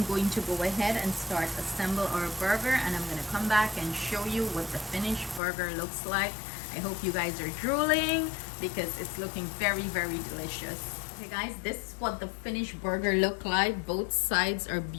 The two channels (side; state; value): right; drops out; at 5.4 s